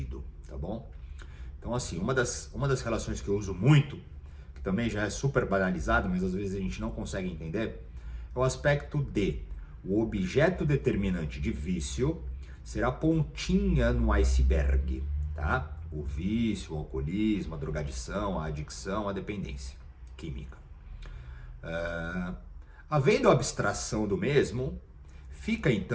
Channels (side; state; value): both; identical; correlation 1.00